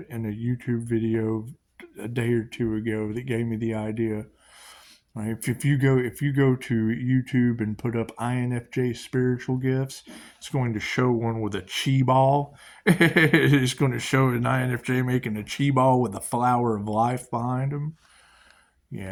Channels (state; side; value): identical; both; correlation 1.00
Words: a YouTube video a day or two ago that gave me the idea. Right? If you go to YouTube and put up INFJ spiritual gifts, it's going to show one with a chi ball. It's going to show an INFJ making a chi ball with a flower of life behind him.